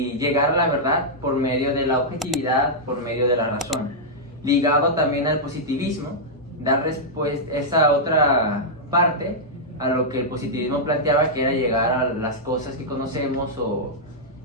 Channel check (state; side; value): normal; both; correlation -0.08